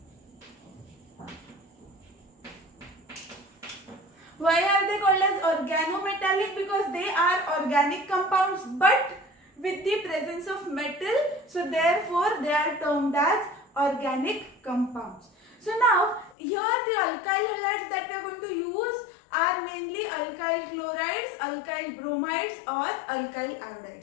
Why are they called as organometallic? Because they are organic compounds but with the presence of metal. So therefore, they are termed as organic compounds. So now, here the alkyl halides that we are going to use are mainly alkyl chlorides, alkyl bromides or alkyl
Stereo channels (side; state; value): right; drops out; at 16.4 s